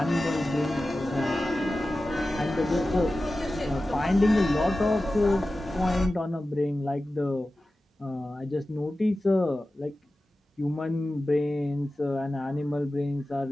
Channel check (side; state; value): both; normal; correlation 0.95